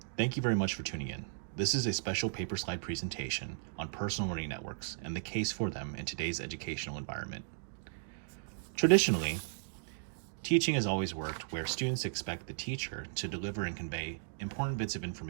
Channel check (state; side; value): silent; left; digital silence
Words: Thank you very much for tuning in. This is a special paper slide presentation on personal learning networks and the case for them in today's educational environment. Traditionally, teaching has always worked where students expect the teacher to deliver and convey important bits of